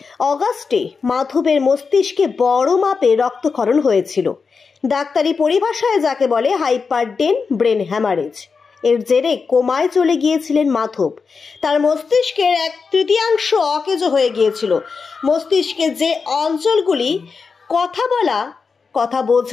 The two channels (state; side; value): quieter; right; 5.1 dB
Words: অগাস্টে মাধবের মস্তিষ্কে বড় মাপে রক্তক্ষরণ হয়েছিল। ডাক্তারি পরিভাষায় যাকে বলে হাইপারডেন ব্রেন হ্যামারেজ। এর জেরে কোমায় চলে গিয়েছিলেন মাধব। তার মস্তিষ্কের 1/3 অকেজো হয়ে গিয়েছিল। মস্তিষ্কে যে অঞ্চলগুলি কথা বলা, কথা